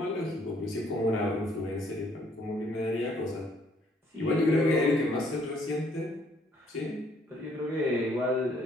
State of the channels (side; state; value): both; normal; correlation 0.65